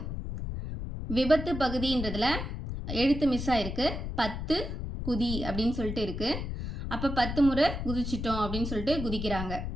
விபத்து பகுதின்றதில் எழுத்து மிஸ் ஆகிருக்கு. 10 குதி அப்படின்னு சொல்லிட்டு இருக்குது. அப்போ 10 முறை குதிச்சிட்டோம் அப்படின்னு சொல்லிட்டு குதிக்கிறாங்க.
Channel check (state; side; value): noise; left; rumble, 5 dB below the sound